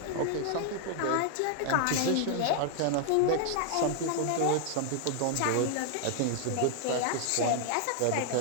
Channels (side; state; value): both; different; correlation 0.00